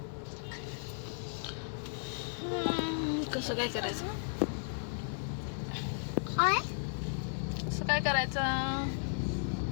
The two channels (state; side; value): silent; right; digital silence